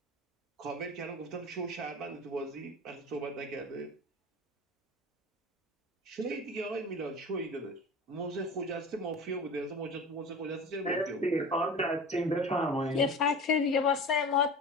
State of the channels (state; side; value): normal; both; correlation 0.35